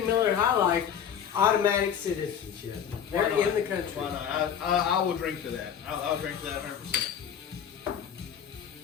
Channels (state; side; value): quieter; right; 8.4 dB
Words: Miller High Life, automatic citizenship. They're in the country. Why not? I will drink to that. I'll drink to that 100%.